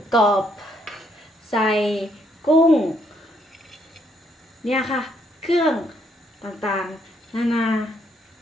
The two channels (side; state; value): both; normal; correlation 0.72